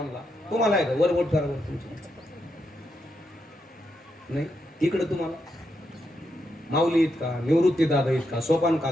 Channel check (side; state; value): both; normal; correlation 0.82